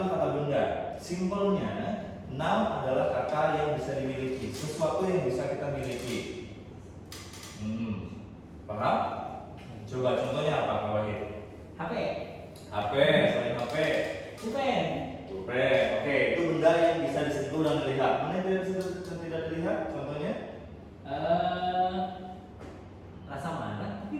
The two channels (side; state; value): both; identical; correlation 1.00